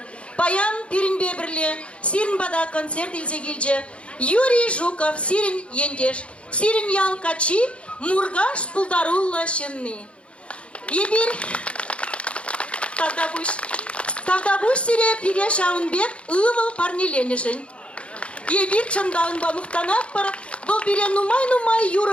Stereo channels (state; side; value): late; right; 0.060 ms